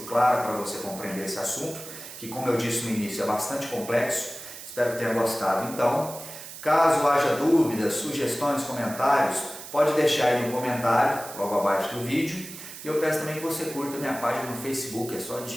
clara para você compreender esse assunto, que, como eu disse no início, é bastante complexo. Espero que tenha gostado. Então, caso haja dúvidas, sugestões, comentários, pode deixar aí no comentário, logo abaixo do vídeo. E eu peço também que você curta minha página no Facebook, é só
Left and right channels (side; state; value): right; noise; hiss, 13 dB below the sound